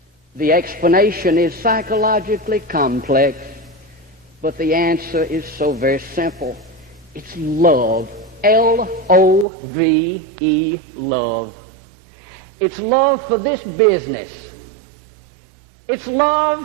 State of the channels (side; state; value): left; drops out; at 9.5 s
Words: The explanation is psychologically complex, but the answer is so very simple. It's love. L-O-V-E, love. It's love for this business. It's